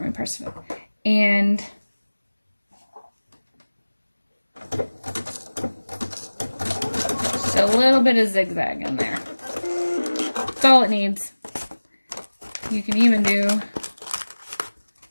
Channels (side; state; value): both; inverted; correlation -1.00